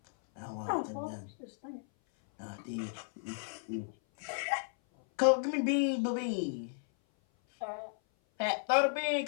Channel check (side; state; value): right; silent; 55 dB below the other